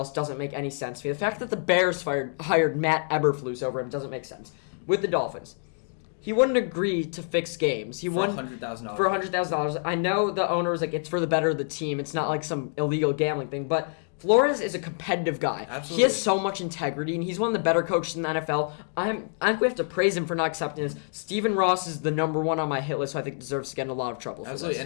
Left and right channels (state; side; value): silent; right; 60 dB below the other